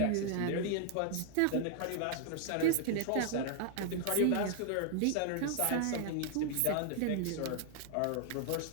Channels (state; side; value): different; both; correlation 0.00